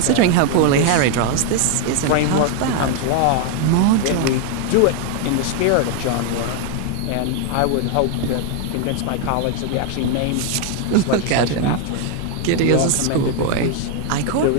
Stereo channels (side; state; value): both; different; correlation 0.00